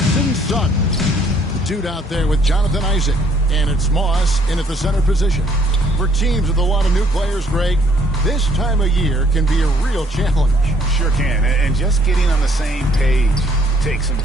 and Suggs. The dude out there with Jonathan Isaac. And it's Moss in at the center position. For teams with a lot of new players, Greg, this time of year can be a real challenge. Sure can. And just getting on the same page takes some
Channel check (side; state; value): both; normal; correlation 0.64